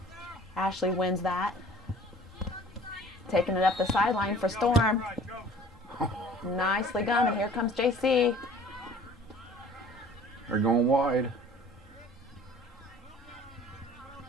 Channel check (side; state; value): both; normal; correlation 0.49